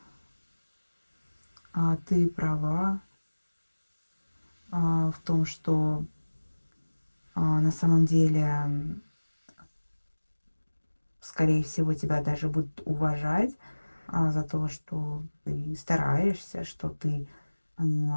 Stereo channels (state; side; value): inverted; both; correlation -1.00